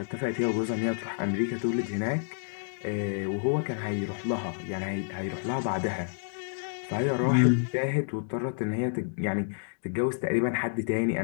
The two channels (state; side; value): silent; right; digital silence